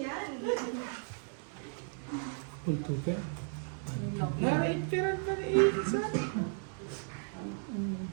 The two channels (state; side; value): silent; left; 55 dB below the other